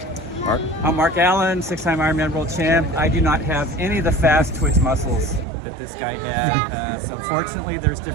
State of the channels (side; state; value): left; drops out; at 5.5 s